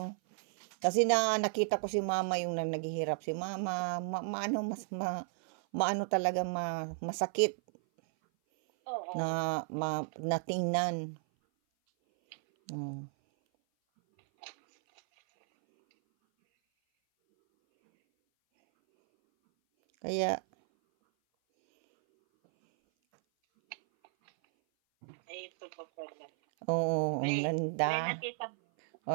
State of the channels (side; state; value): left; silent; 55 dB below the other